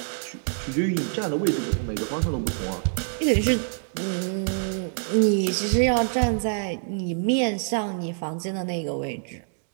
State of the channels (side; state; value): left; silent; digital silence